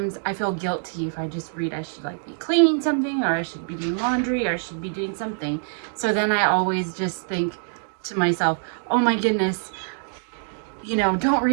I feel guilty if I just read. I should be cleaning something, or I should be doing laundry, or I should be doing something. So then I always just think to myself, oh my goodness, don't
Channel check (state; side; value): silent; left; digital silence